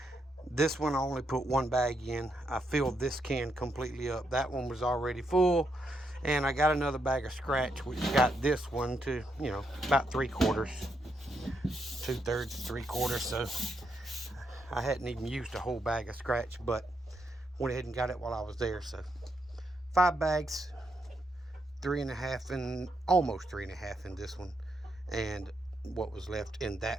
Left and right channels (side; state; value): both; normal; correlation 0.80